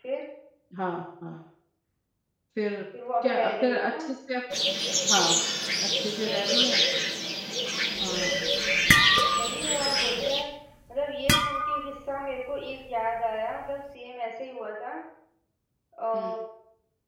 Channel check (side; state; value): both; identical; correlation 1.00